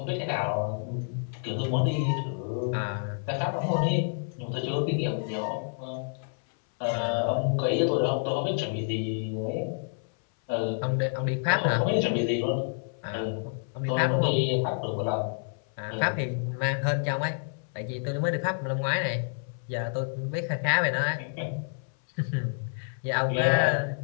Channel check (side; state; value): right; silent; 58 dB below the other